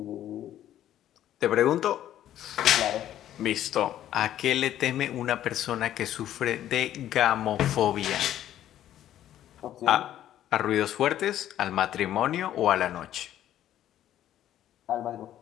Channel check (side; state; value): right; quieter; 12.0 dB